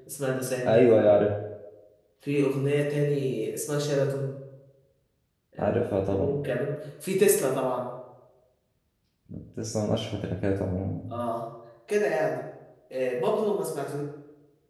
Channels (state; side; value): identical; both; correlation 1.00